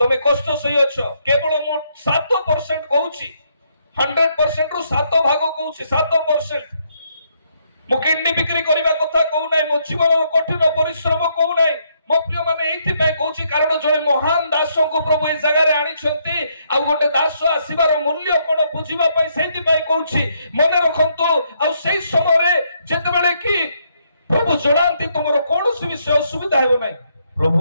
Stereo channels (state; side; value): inverted; both; correlation -0.74